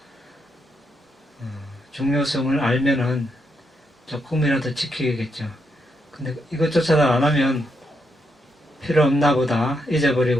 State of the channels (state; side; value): normal; both; correlation 0.80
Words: 중요성을 알면은 조금이라도 지키겠죠. 근데 이것조차도 안 하면 필요 없나 보다